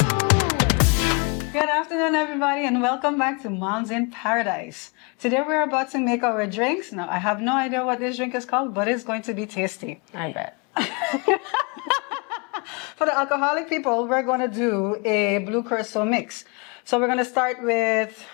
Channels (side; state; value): right; quieter; 31.8 dB